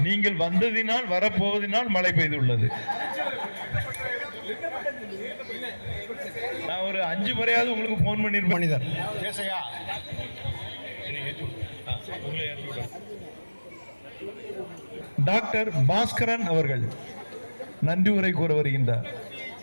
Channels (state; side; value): inverted; both; correlation -1.00